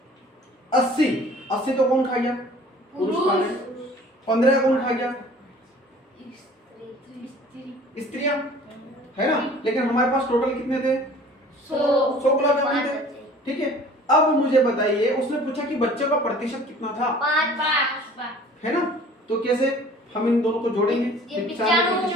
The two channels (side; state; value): both; normal; correlation 0.49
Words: 80 तो कौन खा गया? पुरुष खा गए। 15 कौन खा गया? स्त्रियां, है ना? लेकिन हमारे पास टोटल कितने थे? 100 गुलाब जामुन थे। ठीक है, अब मुझे बताइए, उसने पूछा कि बच्चों का प्रतिशत कितना था? 5। है ना? तो कैसे हम इन दोनों को जोड़ेंगे?